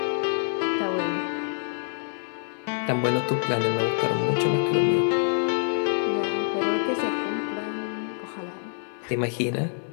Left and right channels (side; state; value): right; silent; 56 dB below the other